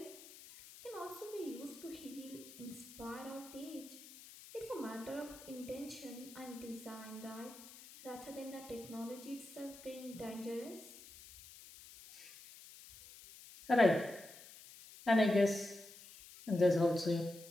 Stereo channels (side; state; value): left; noise; hiss, 17 dB below the sound